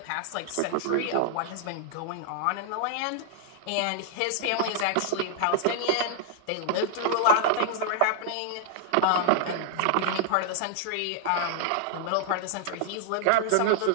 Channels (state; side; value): different; both; correlation -0.01